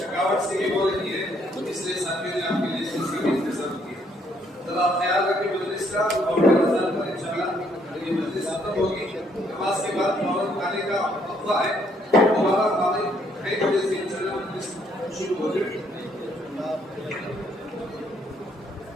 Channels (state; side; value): normal; both; correlation 0.68